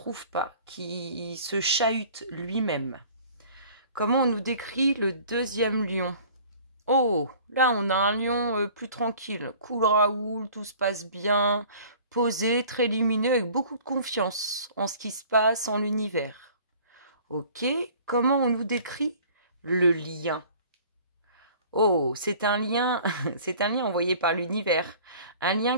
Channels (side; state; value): both; inverted; correlation -0.49